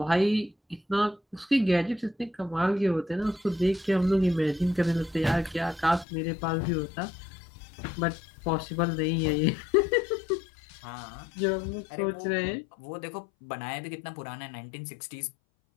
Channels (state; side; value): drops out; right; at 6.1 s